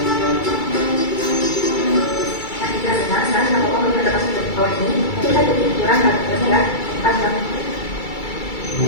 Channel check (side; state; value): right; late; 2.3 ms